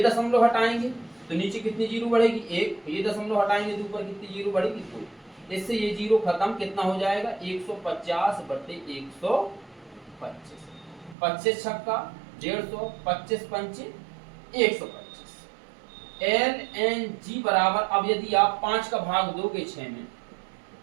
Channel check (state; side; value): drops out; left; at 11.2 s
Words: दशमलव हटाएंगे तो नीचे कितनी जीरो बढ़ेगी 1, ये दशमलव हटाएंगे तो ऊपर कितनी जीरो बढ़ेगी 2, इससे ये जीरो खत्म, कितना हो जाएगा 150 बटे 125, 25 छक्का 150, 25 पंचे 125। LNG बराबर, अब यदि आप 5 का भाग दोगे 6 में,